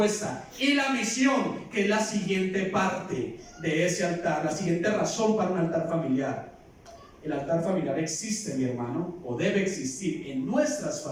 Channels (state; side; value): identical; both; correlation 1.00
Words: Y la misión, que es la siguiente parte de ese altar, la siguiente razón para un altar familiar. El altar familiar existe, mi hermano, o debe existir en nuestras